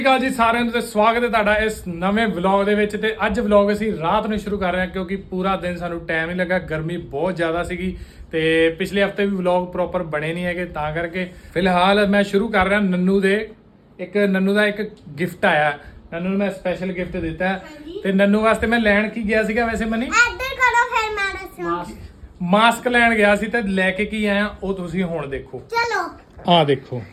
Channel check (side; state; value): both; identical; correlation 1.00